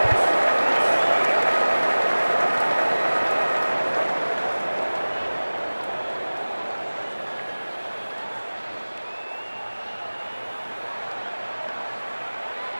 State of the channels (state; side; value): inverted; both; correlation -1.00